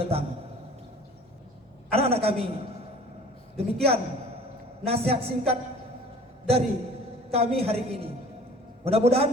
datang. Anak-anak kami, demikian nasihat singkat dari kami hari ini. Mudah-mudahan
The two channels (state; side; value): normal; both; correlation 0.47